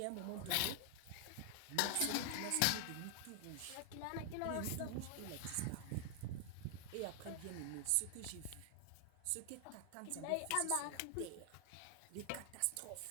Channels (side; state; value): both; different; correlation 0.00